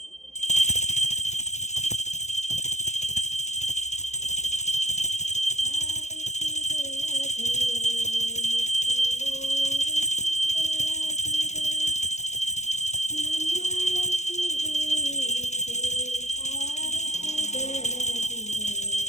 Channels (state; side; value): late; right; 0.33 ms